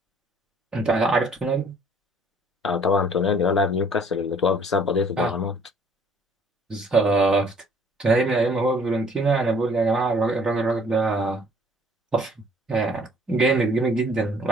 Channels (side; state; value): both; normal; correlation 0.58